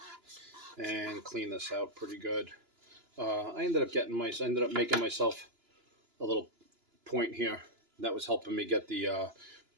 And clean this out pretty good. I ended up making myself a little point here. That was helping me get the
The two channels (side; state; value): left; late; 2.9 ms